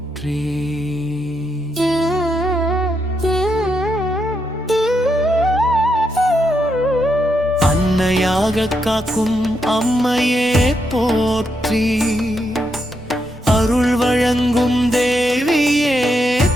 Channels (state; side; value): normal; both; correlation 0.81